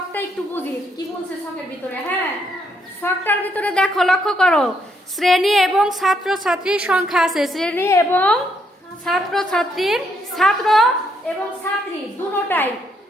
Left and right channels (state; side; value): normal; both; correlation 0.73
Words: একটু বুঝি কি বলছে ছকের ভিতরে। হ্যাঁ, ছকটার ভিতরে দেখো, লক্ষ্য করো, শ্রেণী এবং ছাত্র ছাত্রীর সংখ্যা আছে। শ্রেণী এবং ছাত্র ছাত্রীর, ছাত্র এবং ছাত্রী দুটোটাই।